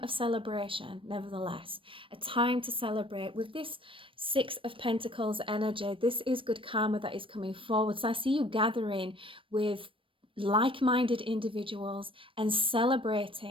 of celebration, nevertheless. A time to celebrate. With this 6 of Pentacles energy, this is good karma that is coming forward. So I see you gathering with like-minded individuals and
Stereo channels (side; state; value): left; late; 0.25 ms